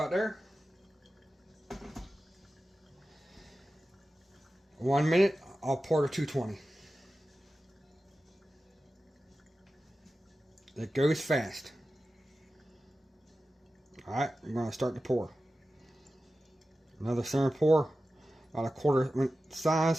there. 1 minute, I'll pour to 220. It goes fast. Alright, I'm gonna start to pour. Another center pour, about 1/4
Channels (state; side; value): normal; both; correlation 0.94